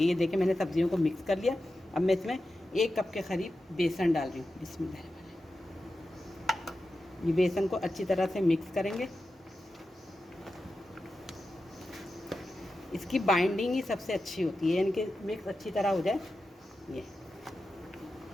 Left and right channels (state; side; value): normal; both; correlation 0.91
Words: ये देखिए मैंने सब्जियों को मिक्स कर लिया। अब मैं इसमें 1 कप के करीब बेसन डाल रही हूँ। बिस्मिल्लाह। ये बेसन को अच्छी तरह से मिक्स करेंगे। इसकी बाइंडिंग ही सबसे अच्छी होती है, यानी कि मिक्स अच्छी तरह हो जाए। ये